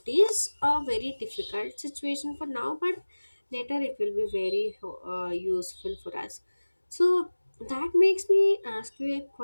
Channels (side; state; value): both; inverted; correlation -1.00